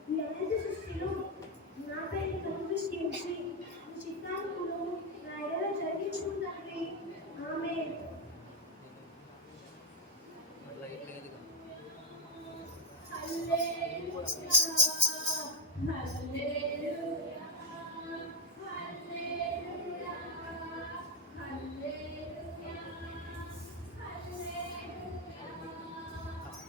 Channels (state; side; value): normal; both; correlation 0.04